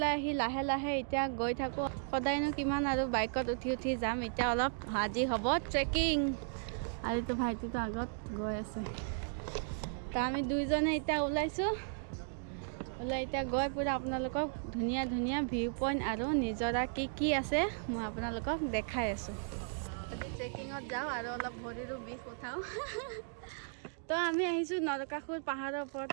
আহি লাহে লাহে এতিয়া গৈ থাকোঁ। সদায়নো কিমান আৰু বাইকত উঠি যাম। এতিয়া অলপ আজি হ'ব ট্ৰেকিং আৰু এইটো ভাইটিটো আগত গৈ আছে। তো আমি দুইজনে এতিয়া ওলাইছোঁ। এতিয়া গৈ পুৰা আপোনালোকক ধুনীয়া ধুনীয়া ভিউ পইণ্ট আৰু নিজৰা কি আছে মই আপোনালোকক দেখাই আছোঁ। ট্ৰেকিঙত যাওঁ আৰু অলপ ভৰিৰো বিষ উঠাওঁ। তো আমি আহিছোঁ নৰকাসুৰ পাহাৰৰ ওপৰত।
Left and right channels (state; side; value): silent; left; digital silence